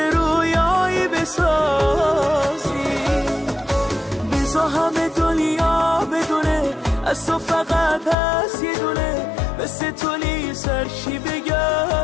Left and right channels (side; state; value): right; drops out; at 8.2 s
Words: رویایی بسازی. بذار همه دنیا بدونه از تو فقط هست یه دونه، مثل تو سرشی